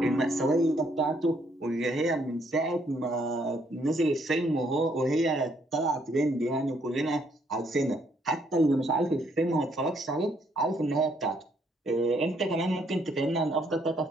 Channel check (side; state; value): both; normal; correlation 0.70